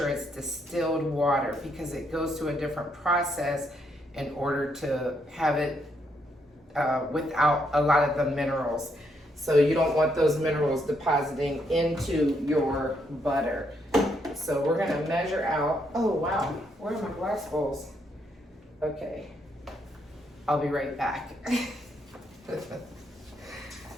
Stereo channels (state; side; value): normal; both; correlation 0.75